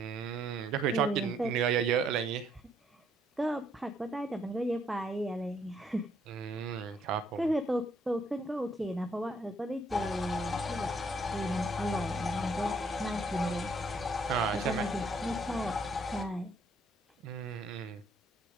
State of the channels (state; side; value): normal; both; correlation 0.69